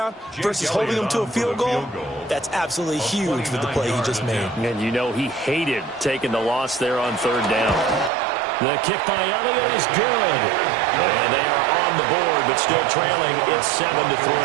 versus holding them to a field goal, that's absolutely huge with the play he just made. And you know he hated taking the loss there on third down. The kick by Elliott is good. And they are on the board, but still trailing. It's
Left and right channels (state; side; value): drops out; left; at 8.1 s